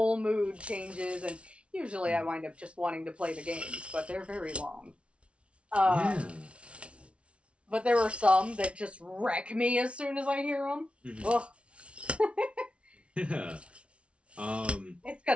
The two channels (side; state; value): left; late; 0.060 ms